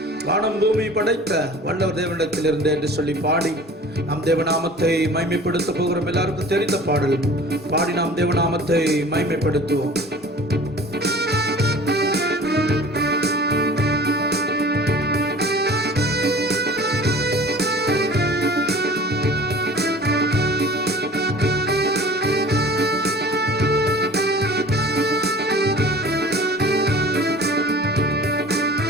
வானம் பூமி படைத்த வல்லவர் தேவனிடத்தில் இருந்து என்று சொல்லி பாடி நாம் தேவநாமத்தை மகிமைப்படுத்த போகிறோம். எல்லாருக்கும் தெரிந்த பாடல் பாடி நாம் தேவநாமத்தை மகிமைப்படுத்துவோம்.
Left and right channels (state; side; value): normal; both; correlation 0.44